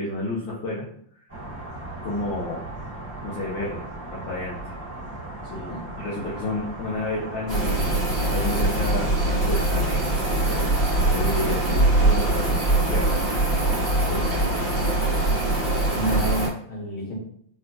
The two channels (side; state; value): right; late; 5.8 ms